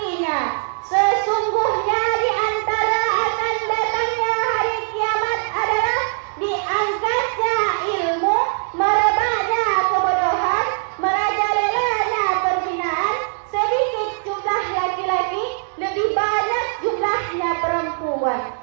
sesungguhnya di antara akan datangnya hari kiamat adalah diangkatnya ilmu, merebaknya kebodohan, merajalelanya perzinahan, sedikit jumlah laki-laki, lebih banyak jumlahnya perempuan.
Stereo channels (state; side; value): silent; left; digital silence